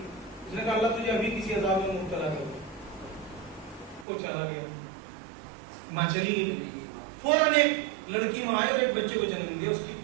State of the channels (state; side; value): drops out; left; at 4.0 s